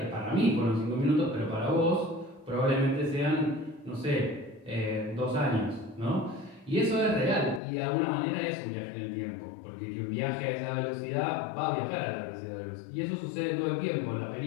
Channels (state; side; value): drops out; right; at 7.6 s